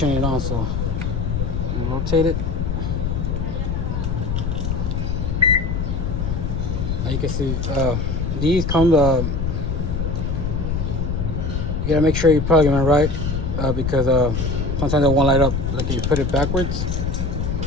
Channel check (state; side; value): noise; left; rumble, 1 dB below the sound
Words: it on, so you rotate it. Now you can see these come you gotta make sure you're plugging it right because sometimes it won't light up. Like if you put it backwards,